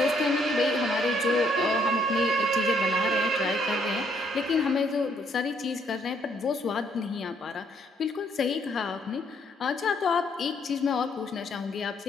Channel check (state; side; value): normal; both; correlation 0.69